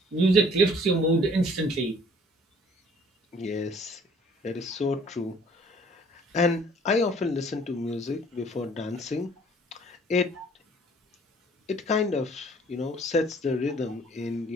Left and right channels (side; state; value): both; normal; correlation 0.56